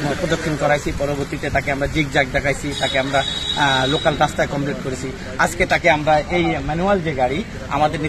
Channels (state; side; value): identical; both; correlation 1.00